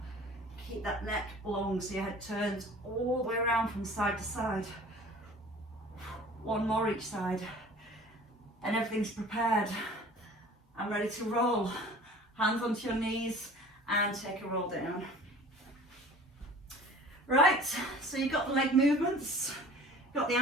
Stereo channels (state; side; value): normal; both; correlation 0.45